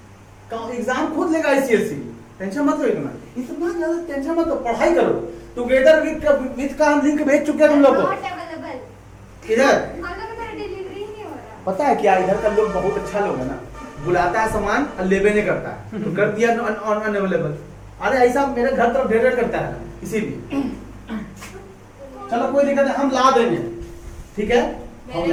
एग्जाम खुद लेगा ICSE, टेंशन मत लो इतना ज्यादा टेंशन मत लो, पढ़ाई करो। टुगेदर विद का हम लिंक भेज चुके हैं तुम लोग को। Not available. इधर हम लोग का डिलीवरी ही नहीं हो रहा। पता है क्या, इधर का लोग बहुत अच्छा लोग है ना, बुलाता है सामान और लेबे नहीं करता है, तो कर दिया अनअवेलेबल। अरे ऐसा मेरे घर तरफ ढेर करता है इसीलिए। चलो कोई दिक्कत नहीं, हम ला देंगे। ठीक है, हम मेरे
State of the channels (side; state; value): both; identical; correlation 1.00